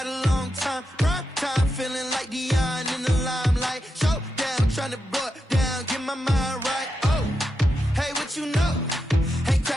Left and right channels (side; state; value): both; normal; correlation 0.87